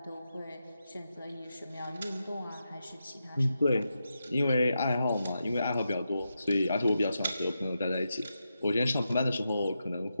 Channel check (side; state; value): both; inverted; correlation -0.87